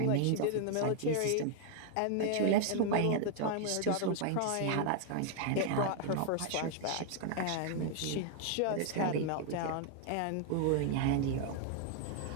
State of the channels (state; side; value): different; both; correlation 0.00